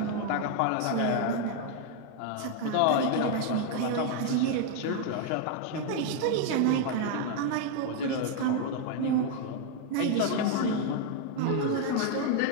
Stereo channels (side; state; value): both; different; correlation 0.00